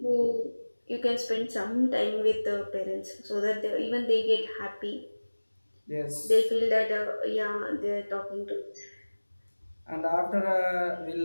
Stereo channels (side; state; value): both; inverted; correlation -1.00